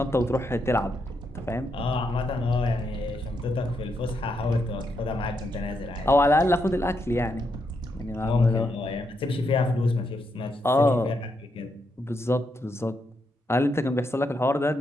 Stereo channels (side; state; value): both; normal; correlation 0.80